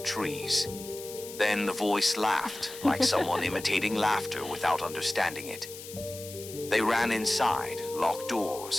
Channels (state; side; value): noise; left; hiss, 13 dB below the sound